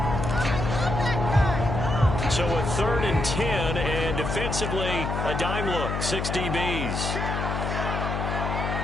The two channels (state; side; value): noise; left; hum, 2 dB below the sound